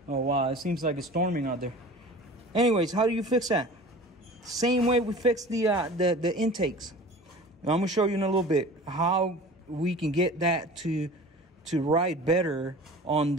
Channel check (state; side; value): normal; both; correlation 0.40